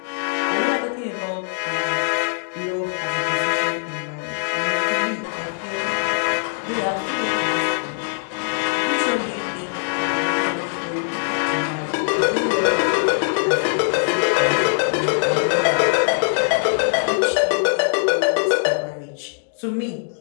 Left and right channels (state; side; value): silent; right; digital silence